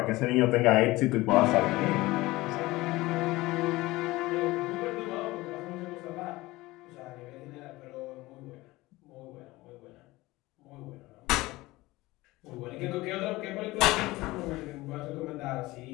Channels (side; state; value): right; quieter; 19.7 dB